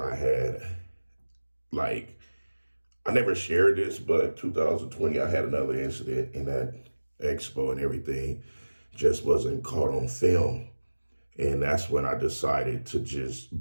had, like, I never shared this, but 2020, I had another incident in that expo and everything just wasn't caught on film. And that's when I decided to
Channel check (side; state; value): both; inverted; correlation -1.00